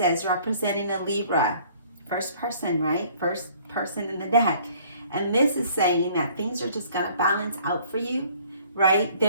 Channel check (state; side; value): inverted; both; correlation -0.56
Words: representing a Libra. First person, right? First person in the deck. And this is saying that things are just going to balance out for you, right?